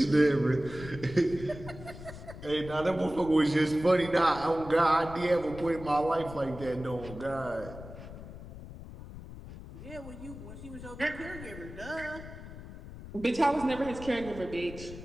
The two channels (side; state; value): left; noise; rumble, 13 dB below the sound